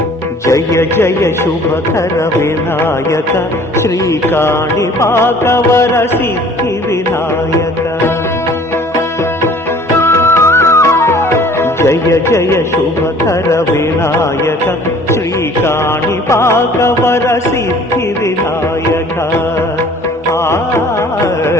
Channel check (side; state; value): both; normal; correlation 0.52